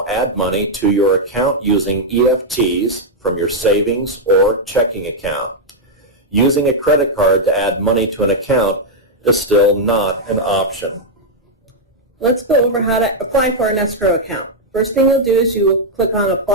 add money to your account using EFTs from your savings or checking account. Using a credit card to add money to an account is still not an option. Let's go over how to apply for an escrow account. First thing you'll do is you will click on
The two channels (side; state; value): both; normal; correlation -0.03